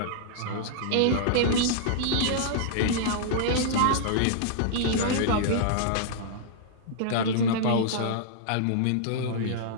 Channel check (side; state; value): both; different; correlation -0.02